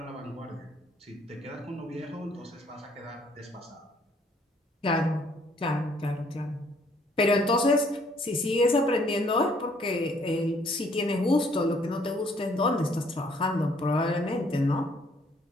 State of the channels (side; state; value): both; normal; correlation 0.64